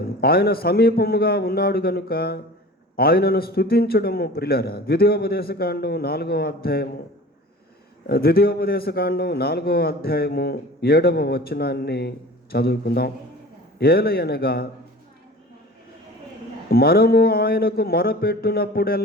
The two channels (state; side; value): normal; both; correlation 0.40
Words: ఆయన సమీపముగా ఉన్నాడు కనుక ఆయనను స్తుతించడము. ప్రియులారా, ద్వితీయోపదేశకాండం 4వ అధ్యాయము 7వ వచనాన్ని చదువుకుందాం. ఏలయనగా మనము ఆయనకు